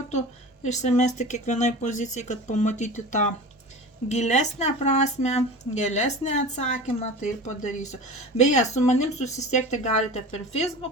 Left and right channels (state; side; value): normal; both; correlation 0.34